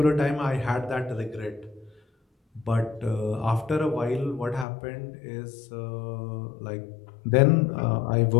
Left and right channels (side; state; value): right; drops out; at 4.7 s